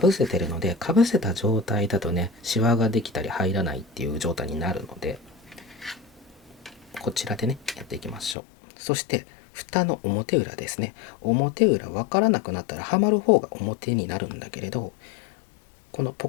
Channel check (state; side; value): drops out; right; at 8.3 s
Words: せてるので、かぶせた状態だとね、シワができたり入らないっていう状態になるので、こちらでね、やっていきましょう。そして蓋の表裏ですね。表裏分からなくなったらはまる方が表になるんだけれど、このポ